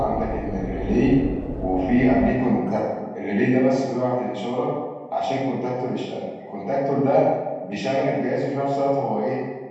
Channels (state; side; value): identical; both; correlation 1.00